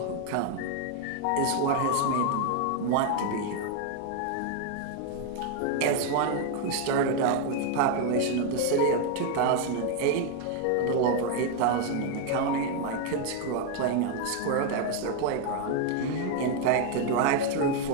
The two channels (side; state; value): both; different; correlation 0.01